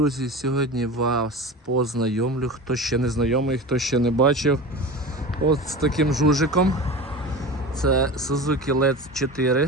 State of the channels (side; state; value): both; normal; correlation 0.31